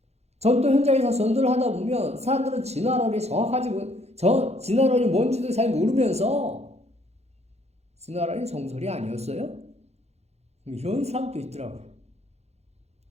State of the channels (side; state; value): left; late; 0.31 ms